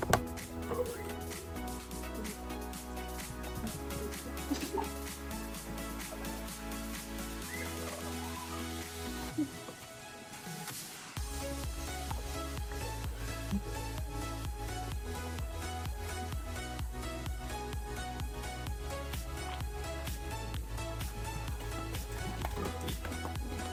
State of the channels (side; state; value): both; identical; correlation 1.00